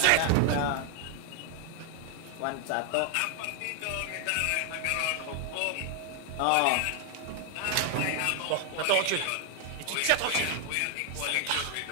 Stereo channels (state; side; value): different; both; correlation 0.00